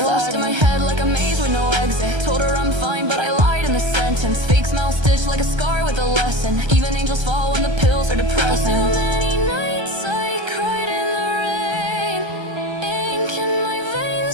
in my head like a maze with no exit. Told her I'm fine, but I lied in the sentence. Fake smile stitched like a scar with a lesson. Even angels fall when the pills are depressing. Too many nights I cried in the rain. Ink in my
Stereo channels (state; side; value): late; left; 1.3 ms